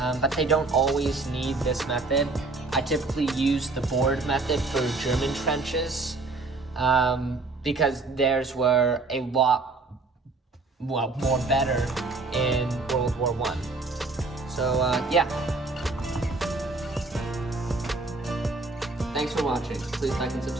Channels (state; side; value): quieter; left; 3.5 dB